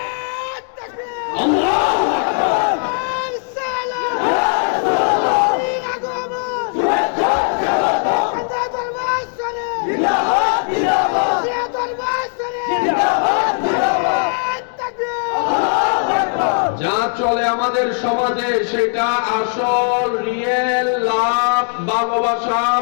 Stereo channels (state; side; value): silent; right; 58 dB below the other